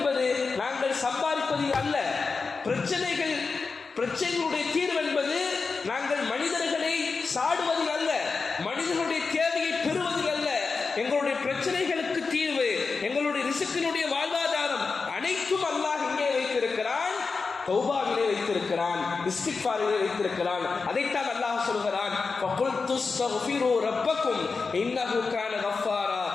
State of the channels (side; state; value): right; quieter; 4.5 dB